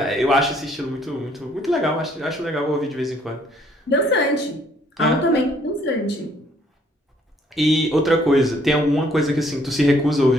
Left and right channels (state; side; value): normal; both; correlation 0.64